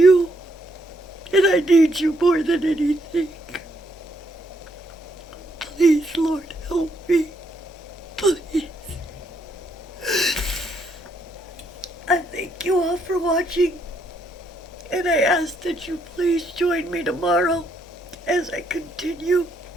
and I need you more than anything. Please, Lord, help me. Please. I thank you all for watching, and I ask that you please join me tomorrow as I continue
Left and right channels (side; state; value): both; normal; correlation 0.74